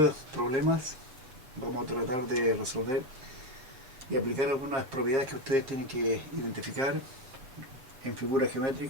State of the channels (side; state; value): left; late; 7.5 ms